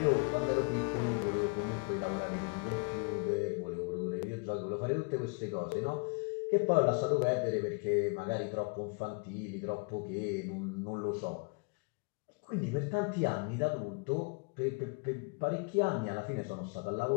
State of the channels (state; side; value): quieter; right; 32.5 dB